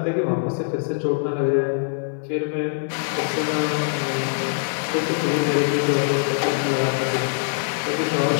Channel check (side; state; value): right; silent; 63 dB below the other